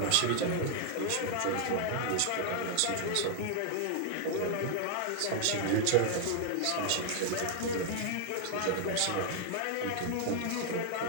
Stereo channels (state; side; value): different; both; correlation 0.00